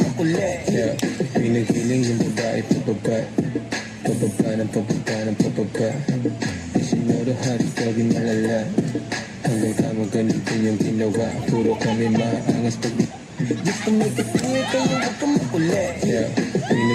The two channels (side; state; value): both; identical; correlation 1.00